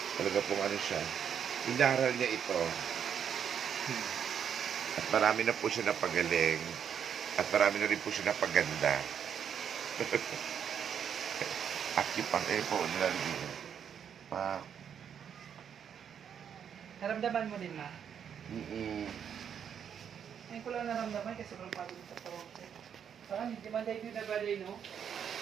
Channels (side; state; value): left; quieter; 8.2 dB